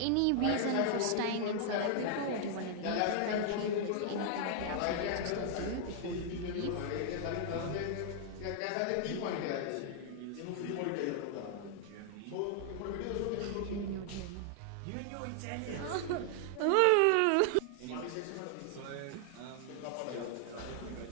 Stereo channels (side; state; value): both; different; correlation 0.00